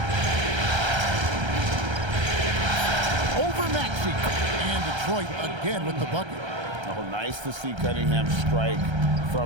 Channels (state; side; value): late; left; 1.3 ms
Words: Over Maxey. And Detroit again with the bucket. Oh, nice to see Cunningham strike